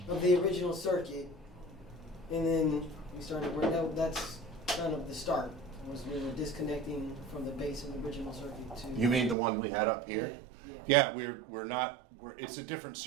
of the original circuit, and then we started where that's kind of the start. Was we were disconnecting from the base of the original circuit to. You mean the one we had up here? Yeah. Yeah, we're not. It's a different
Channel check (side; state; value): left; drops out; at 9.3 s